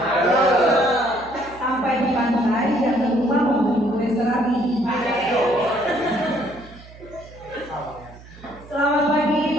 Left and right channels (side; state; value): right; noise; hum, 20 dB below the sound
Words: sampai di pantai dan ke rumah membeli kue serabi. Selamat pagi